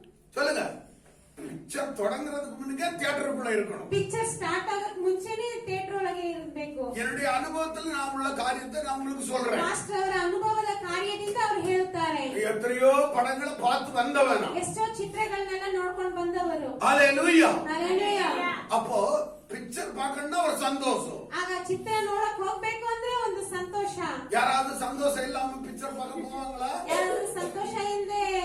சொல்லுங்க. பிக்சர் தொடங்குறதுக்கு முன்னே தியேட்டருக்குள்ள இருக்கணும். ಪಿಕ್ಚರ್ ಸ್ಟಾರ್ಟ್ ಆಗಕ್ ಮುಂಚೆನೆ ಥಿಯೇಟರ್ ಒಳಗೆ ಇರಬೇಕು. என்னுடைய அனுபவத்தில் நான் உள்ள காரியத்தை நான் உங்களுக்கு சொல்றேன். ಮಾಸ್ಟರ್ ಅವರ ಅನುಭವದ ಕಾರ್ಯದಿಂದ ಅವರು ಹೇಳುತ್ತಾರೆ. எத்தனையோ படங்களை பார்த்து வந்தவன். ಎಷ್ಟೋ ಚಿತ್ರಗಳನ್ನೆಲ್ಲ ನೋಡ್ಕೊಂಡು ಬಂದವರು. ஹல்லேலூயா. ಹಲ್ಲೆಲೂಯಾ. அப்போ பிக்சர் பார்க்கணும்னா ஒரு சந்தோஷம். ಆಗ ಚಿತ್ರ ನೋಡಕ್ ಹೋಗ್ಬೇಕು ಅಂದ್ರೆ ಒಂದು ಸಂತೋಷ. யாராவது சந்தோஷம் இல்லாம பிக்சர் பார்க்க போவாங்களா? ಯಾರಾದ್ರೂ ಸಂತೋಷ ಇಲ್ಲದೆ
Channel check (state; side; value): identical; both; correlation 1.00